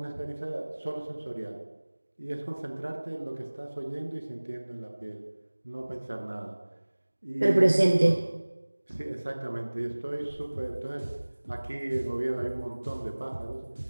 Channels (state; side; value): inverted; both; correlation -1.00